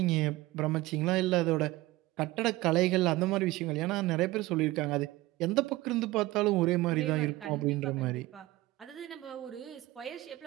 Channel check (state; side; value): quieter; left; 18.5 dB